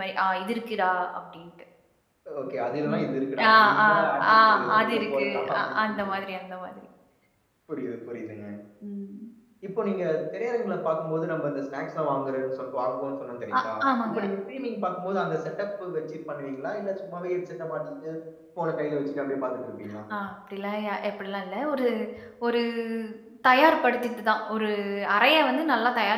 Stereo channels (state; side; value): identical; both; correlation 1.00